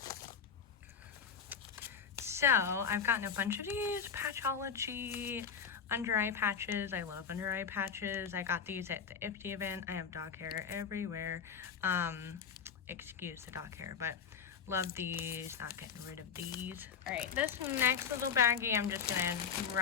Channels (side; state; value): right; quieter; 7.0 dB